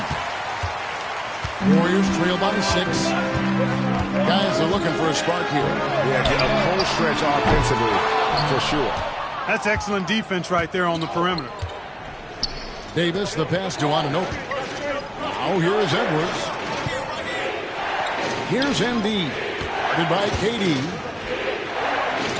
Warriors trail by 6. Guys are looking for a spark here. Yeah, get a cold stretch offensively for sure. That's excellent defense right there on the perimeter. Davis, the pass to Anunoby. Now here's Edwards. Here's Embiid. Guarded by KD.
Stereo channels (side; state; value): both; identical; correlation 1.00